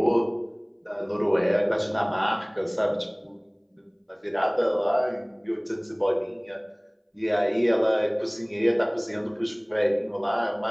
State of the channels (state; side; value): identical; both; correlation 1.00